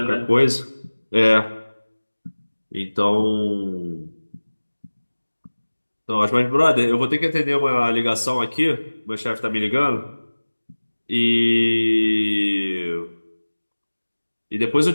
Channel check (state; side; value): inverted; both; correlation -1.00